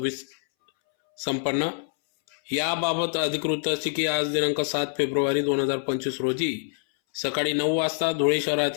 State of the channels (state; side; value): silent; right; 61 dB below the other